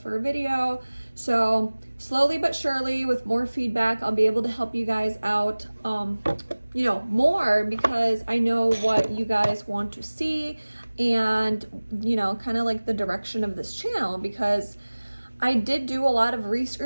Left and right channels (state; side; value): inverted; both; correlation -1.00